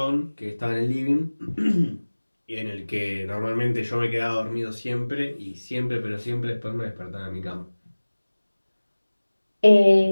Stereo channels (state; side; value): inverted; both; correlation -1.00